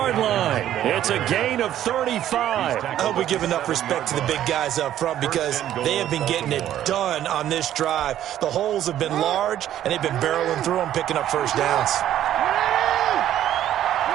line. It's a gain of 35. I hope we give enough respect to the big guys up front because they have been getting it done on this drive. The holes have been large, and they've been barreling through them, picking up first downs.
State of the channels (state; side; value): quieter; left; 11.8 dB